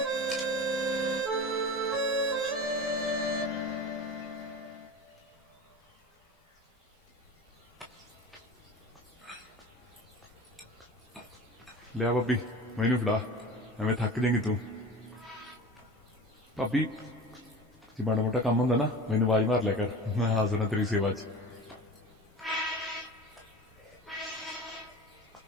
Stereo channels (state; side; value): normal; both; correlation 0.34